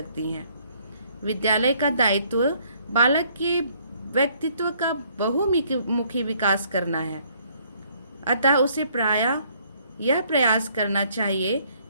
हैं। विद्यालय का दायित्व बालक के व्यक्तित्व का बहुमुखी विकास करना है। अतः उसे प्रायः यह प्रयास करना चाहिए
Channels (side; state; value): both; inverted; correlation -0.64